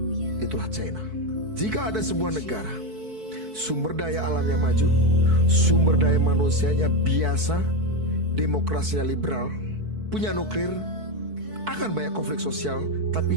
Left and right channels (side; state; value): left; late; 4.6 ms